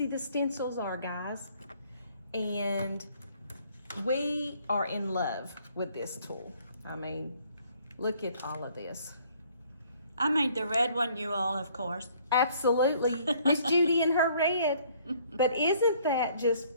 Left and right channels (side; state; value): both; inverted; correlation -0.61